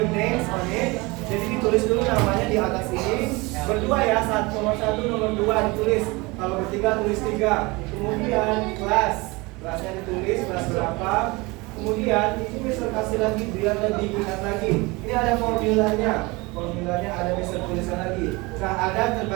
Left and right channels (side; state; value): left; quieter; 24.4 dB